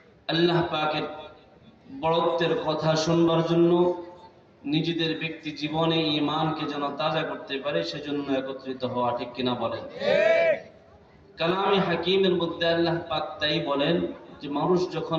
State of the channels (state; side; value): identical; both; correlation 1.00